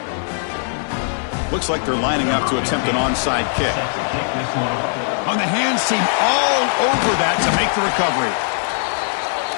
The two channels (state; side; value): silent; right; digital silence